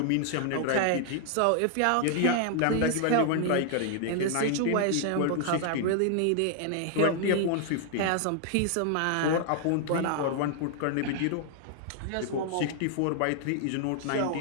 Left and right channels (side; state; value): both; different; correlation 0.00